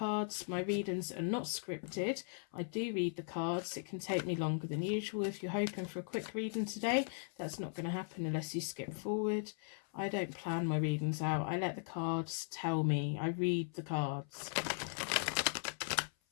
My readings are not scripted. I do read the cards. It can take me longer than usual. If you're hoping for a quick reading today, that's not going to happen unless you skip forward. I don't plan my readings out. I let the cards tell me. I read the cards.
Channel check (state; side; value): silent; right; 52 dB below the other